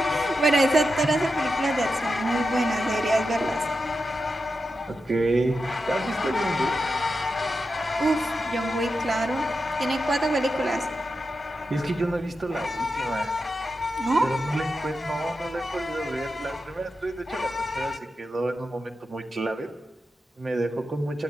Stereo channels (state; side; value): normal; both; correlation 0.89